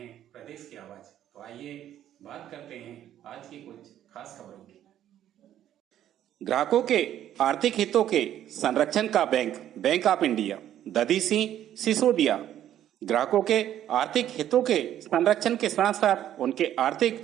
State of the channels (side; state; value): left; quieter; 11.4 dB